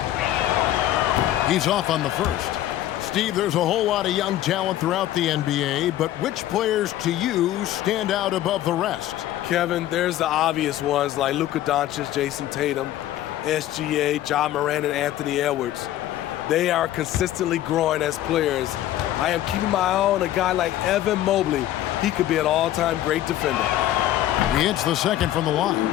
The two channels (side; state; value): right; quieter; 13.4 dB